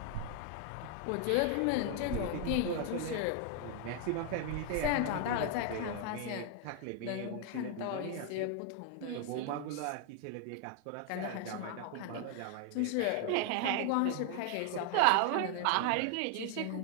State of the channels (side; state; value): both; different; correlation 0.00